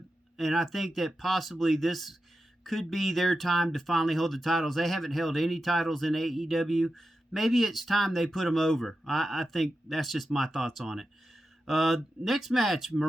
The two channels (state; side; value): normal; both; correlation 0.90